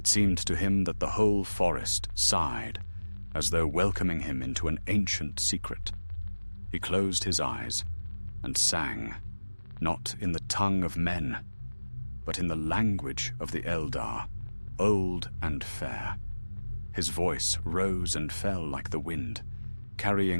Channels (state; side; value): inverted; both; correlation -1.00